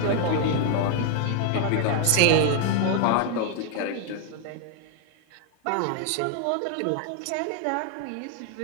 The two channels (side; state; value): both; different; correlation 0.00